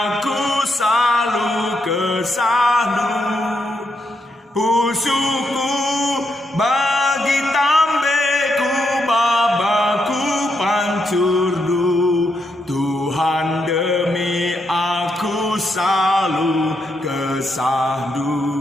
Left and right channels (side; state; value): both; normal; correlation 0.80